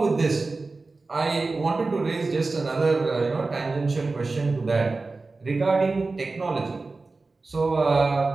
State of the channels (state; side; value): quieter; left; 3.7 dB